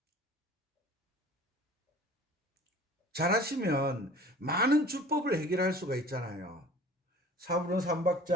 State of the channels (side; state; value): both; normal; correlation 0.45